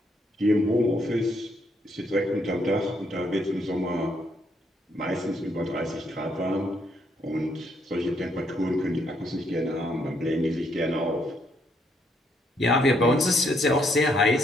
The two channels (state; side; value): normal; both; correlation 0.73